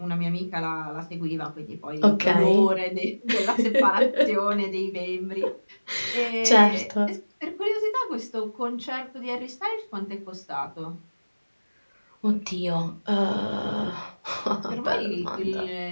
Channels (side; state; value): both; inverted; correlation -1.00